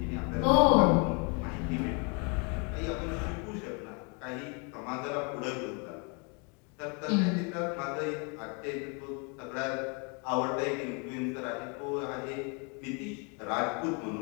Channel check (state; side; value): quieter; right; 34.3 dB